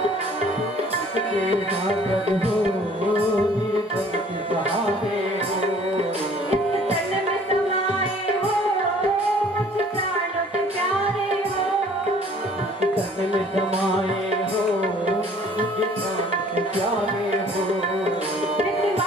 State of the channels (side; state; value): both; normal; correlation 0.54